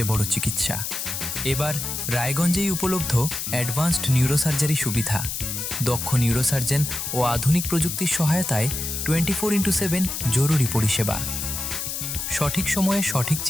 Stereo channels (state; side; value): noise; left; hiss, 4 dB below the sound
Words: বড় চিকিৎসা। এবার রায়গঞ্জেই উপলব্ধ অ্যাডভান্সড নিউরোসার্জারি সুবিধা। দক্ষ নিউরোসার্জন ও আধুনিক প্রযুক্তির সহায়তায় 24x7 জরুরি পরিষেবা। সঠিক সময়ে সঠিক